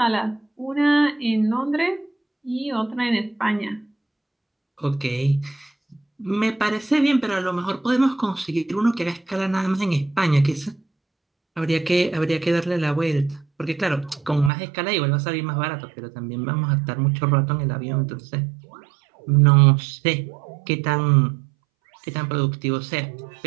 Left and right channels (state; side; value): drops out; left; at 14.5 s